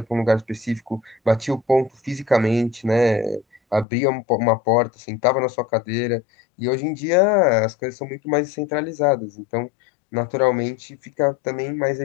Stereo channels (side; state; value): right; drops out; at 3.9 s